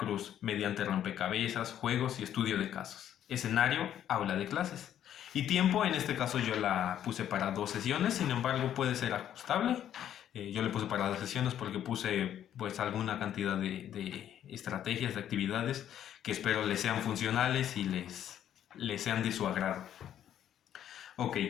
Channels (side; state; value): right; quieter; 10.6 dB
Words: mediante rompecabezas, juegos y estudio de casos. Escenario, aula de clases. Y tiempo, en este caso yo la puse para 2 sesiones, sin embargo puede ser ajustable. Yo le puse para 2 sesiones porque puse pues alguna cantidad de estrategias, de actividades que espero les sean funcionales y les sean de su agrado. Ok.